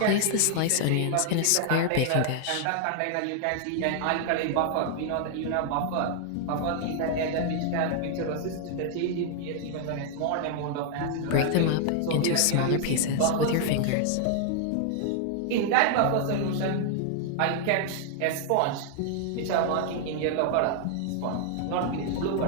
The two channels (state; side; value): different; both; correlation 0.00